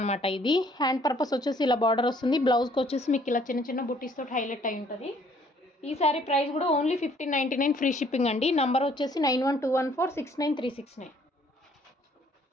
ఇది. హ్యాండ్ పర్పస్ వచ్చేసి ఇలా బార్డర్ వస్తుంది. బ్లౌజ్కి వచ్చేసి మీకు ఇలా చిన్న చిన్న బుటీస్ తోటి హైలైట్ అయి ఉంటుంది. ఈ శారీ ప్రైస్ కూడా ఓన్లీ 1599 ఫ్రీ షిప్పింగ్ అండి. నంబర్ వచ్చేసి 9121469369.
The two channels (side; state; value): both; normal; correlation 0.61